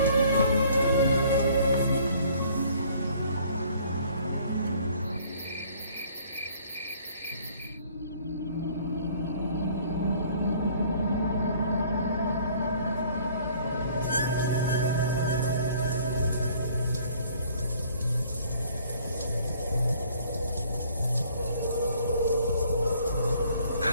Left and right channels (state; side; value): inverted; both; correlation -0.57